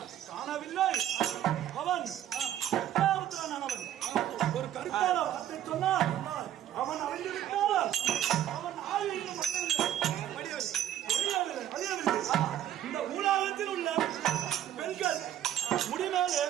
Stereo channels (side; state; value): left; quieter; 11.5 dB